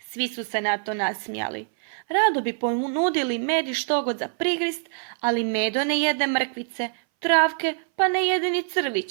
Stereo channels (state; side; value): silent; left; 59 dB below the other